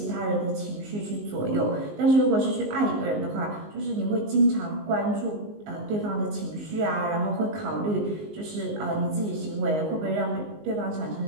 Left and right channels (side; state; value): left; late; 19 ms